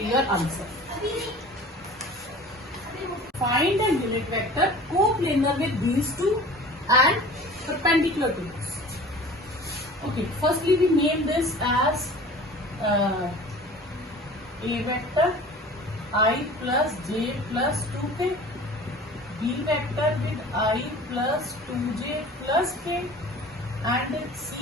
your answer. Find a unit vector coplanar with these two and perpendicular to this. Okay, firstly we name this as A vector I plus j plus 2k, B vector with I plus 2j plus k, and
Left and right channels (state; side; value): normal; both; correlation 0.42